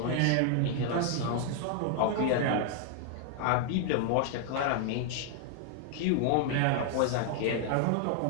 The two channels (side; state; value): both; different; correlation 0.00